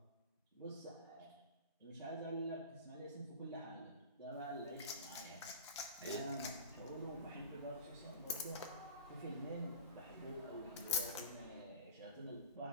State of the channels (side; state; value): both; inverted; correlation -0.36